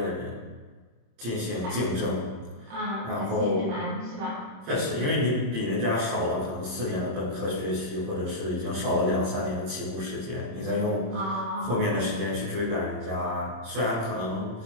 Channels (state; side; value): late; left; 26 ms